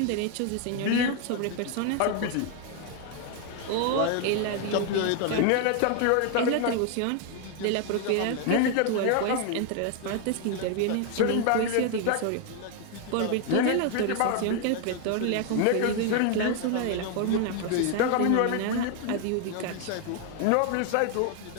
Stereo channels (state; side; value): different; both; correlation 0.01